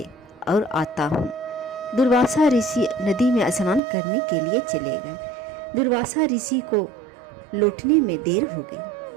और आता हूँ। दुर्वासा ऋषि नदी में स्नान करने के लिए चले गए। दुर्वासा ऋषि को लौटने में देर हो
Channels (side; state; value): left; drops out; at 3.8 s